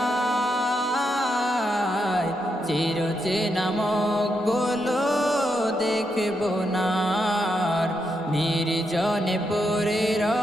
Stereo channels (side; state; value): both; normal; correlation 0.82